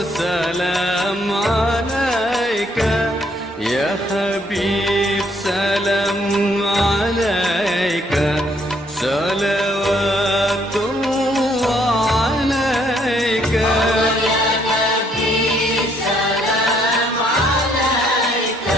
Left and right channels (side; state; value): both; normal; correlation 0.68